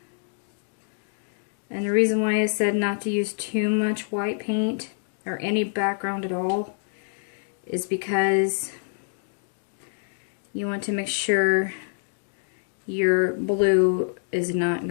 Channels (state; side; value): silent; right; digital silence